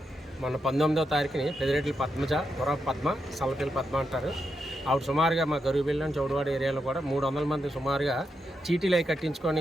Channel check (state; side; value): normal; both; correlation 0.84